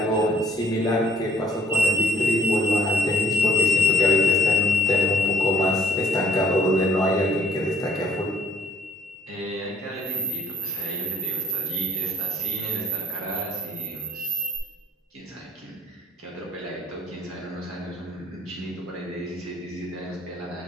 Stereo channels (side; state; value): both; normal; correlation 0.57